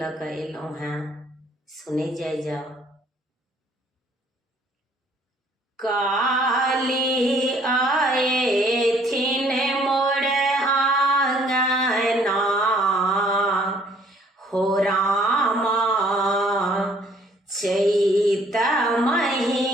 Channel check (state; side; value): normal; both; correlation 0.60